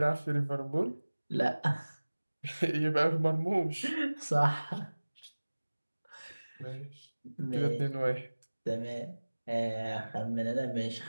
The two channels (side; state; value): both; inverted; correlation -1.00